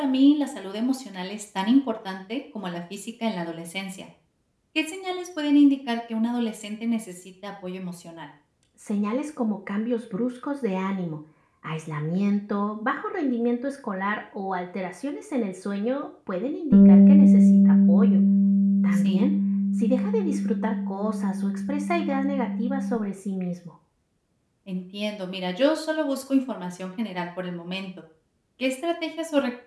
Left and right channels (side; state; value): both; identical; correlation 1.00